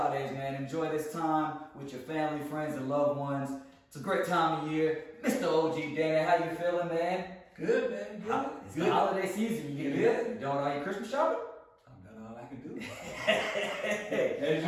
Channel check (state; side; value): identical; both; correlation 1.00